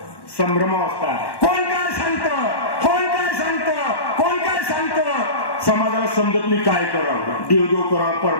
संभ्रमावस्था. कोण काय सांगतं, कोण काय सांगतं, कोण काय सांगतं. समाजाला समजत नाही काय करावं, देवदेव करावं,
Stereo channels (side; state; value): right; late; 1.1 ms